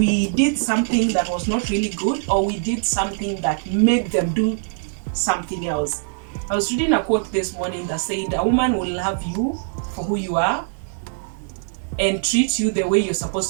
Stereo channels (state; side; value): silent; left; digital silence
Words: did something that was not really good, or we did something that made them do something else. I was reading a quote this morning that said, a woman will love you for who you are and treat you the way you're